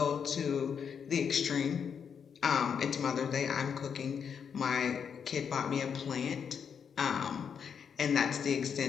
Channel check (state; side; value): quieter; right; 7.1 dB